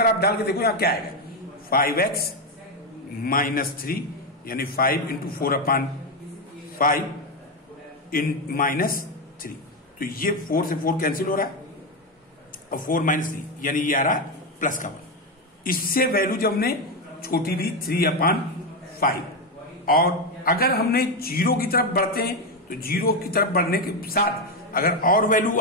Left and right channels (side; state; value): both; normal; correlation 0.09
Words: आप डाल के देखो यहाँ क्या आएगा, 5x - 3, यानी 5 × 4/5 -3। तो ये 4 से 4 कैंसिल हो रहा है और 4 - 3, यानी ये आ रहा है प्लस का 1। इससे वैल्यू जब हमने छोटी ली 3/5, और अगर हमने 0 की तरफ बढ़ते हैं तो 0 की तरफ बढ़ने के साथ अगर और वैल्यू